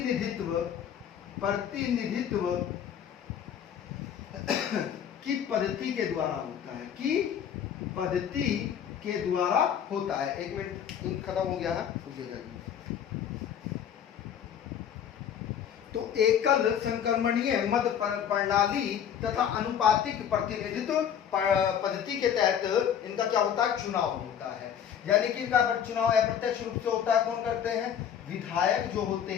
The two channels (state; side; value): quieter; right; 8.8 dB